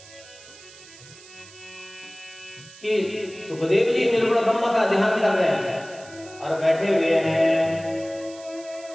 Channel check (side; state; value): right; noise; hiss, 20 dB below the sound